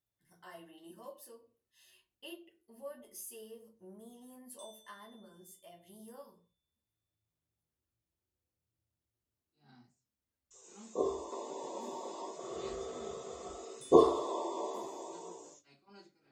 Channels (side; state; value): both; identical; correlation 1.00